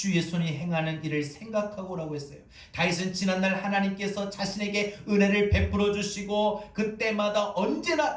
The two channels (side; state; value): both; identical; correlation 1.00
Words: 손이 행하는 일을 생각하고 라고 했어요. 다윗은 지난날 하나님께서 자신에게 은혜를 베풀어 주시고 그때마다